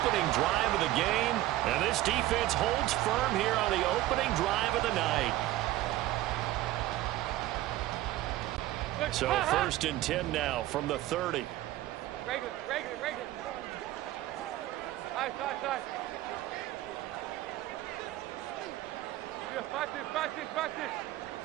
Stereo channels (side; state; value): left; quieter; 15.5 dB